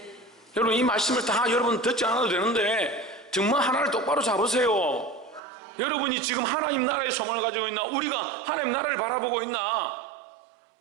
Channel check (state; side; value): drops out; left; at 5.4 s